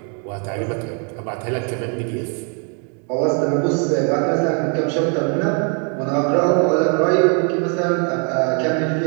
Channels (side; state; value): left; quieter; 39.4 dB